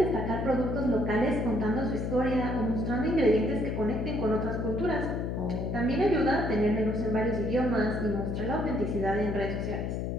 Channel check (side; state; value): left; noise; hum, 2 dB below the sound